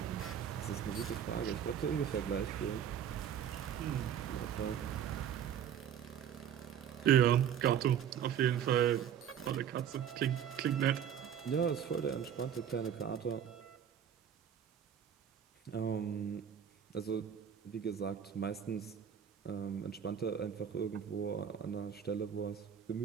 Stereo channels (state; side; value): quieter; left; 8.9 dB